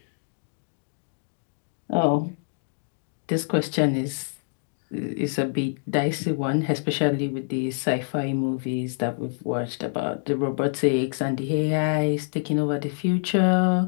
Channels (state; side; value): silent; right; digital silence